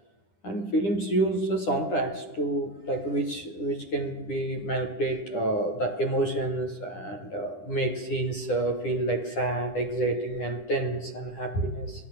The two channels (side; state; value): right; late; 10 ms